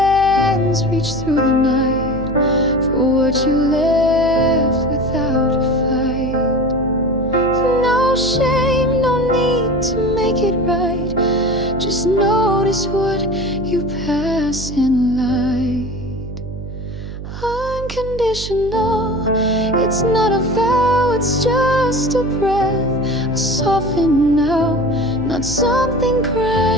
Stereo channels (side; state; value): right; noise; hum, 10 dB below the sound